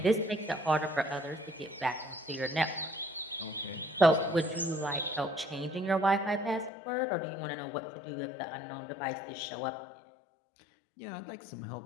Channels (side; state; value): right; drops out; at 6.7 s